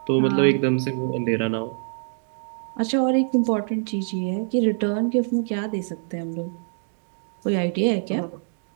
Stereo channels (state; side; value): silent; left; digital silence